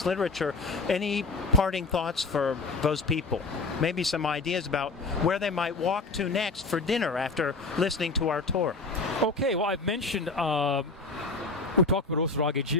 literature. Any parting thoughts for those people? Maybe some ideas about where they might walk to next for dinner after listening to our tour. Okay, well, I've mentioned, we talked about Osaragi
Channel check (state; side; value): quieter; right; 3.7 dB